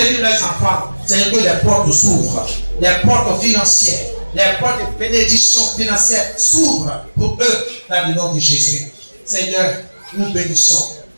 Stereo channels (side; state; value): both; inverted; correlation -1.00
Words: leurs enfants, Seigneur, que les portes s'ouvrent, les portes financières, les portes de bénédiction financière s'ouvrent pour eux dans le nom de Jésus. Seigneur, nous bénissons